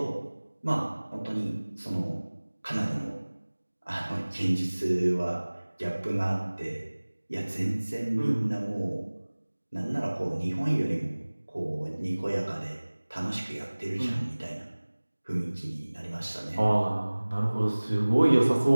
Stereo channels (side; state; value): both; inverted; correlation -1.00